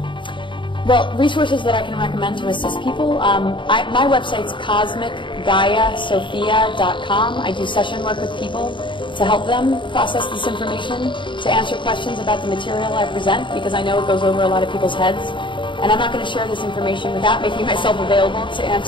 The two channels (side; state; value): right; late; 0.24 ms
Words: well, resources that I can recommend to assist people, my website's cosmicgaiasophia.com. I do session work with people to help them process this information, to answer questions about the material I present, because I know it goes over a lot of people's heads. And I'm not going to share this information without making myself available to